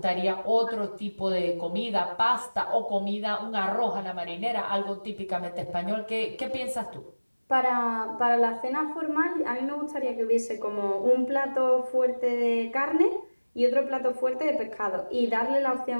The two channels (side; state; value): both; inverted; correlation -1.00